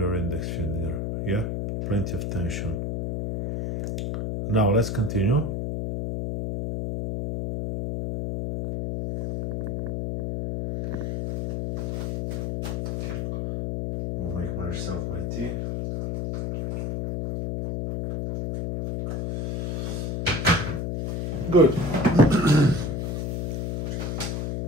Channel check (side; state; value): left; noise; hum, 2 dB below the sound